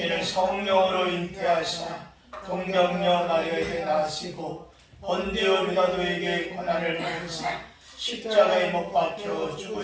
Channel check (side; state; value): both; identical; correlation 1.00